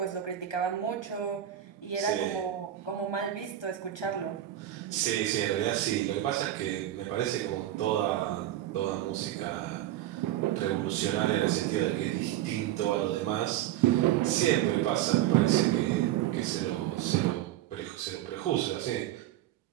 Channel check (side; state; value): left; quieter; 12.6 dB